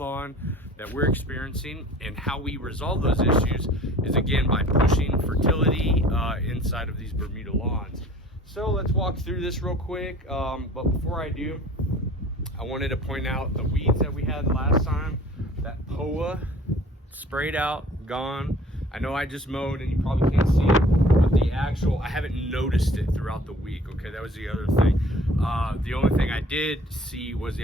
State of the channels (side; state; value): both; normal; correlation 0.49